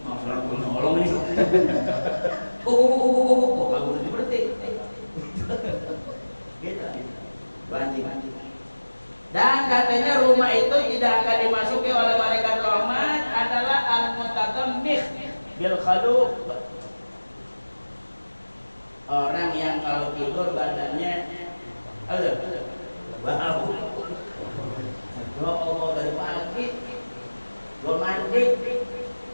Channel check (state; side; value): inverted; both; correlation -1.00